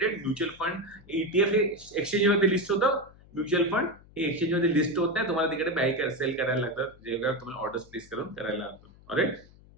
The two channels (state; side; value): noise; left; hum, 24 dB below the sound